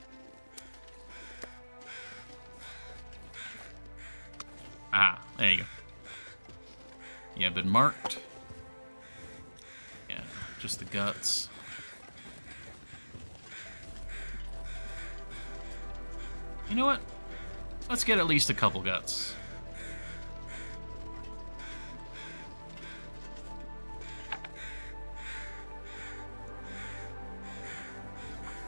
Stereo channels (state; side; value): inverted; both; correlation -1.00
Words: Ah, there you go. Yeah, been marked. Yeah, just the guts. You know what? Let's get at least a couple guts.